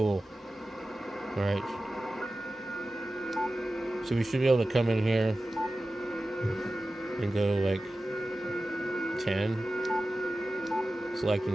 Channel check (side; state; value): both; normal; correlation 0.95